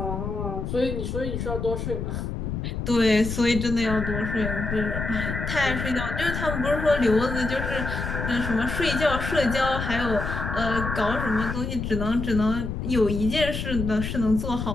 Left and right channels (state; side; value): noise; left; rumble, 4 dB below the sound